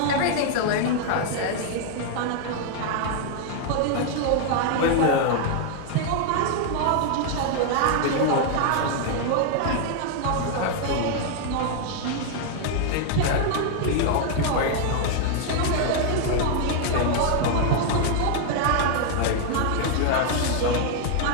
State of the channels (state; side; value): different; both; correlation 0.00